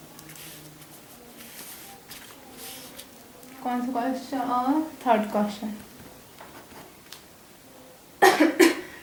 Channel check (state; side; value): identical; both; correlation 1.00